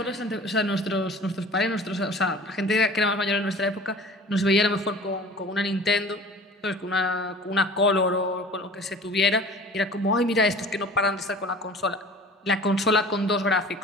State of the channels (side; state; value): both; normal; correlation 0.43